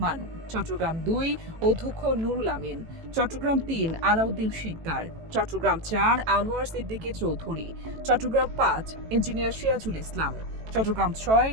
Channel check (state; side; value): late; left; 18 ms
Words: চট্টগ্রাম ২ অধ্যক্ষ নুরুল আমিন। চট্টগ্রাম ৩ আলাউদ্দিন শিকদার। চট্টগ্রাম ৪ আনোয়ার সিদ্দিকী চৌধুরী। চট্টগ্রাম ৫ ইঞ্জিনিয়ার সিরাজুল ইসলাম। চট্টগ্রাম ৬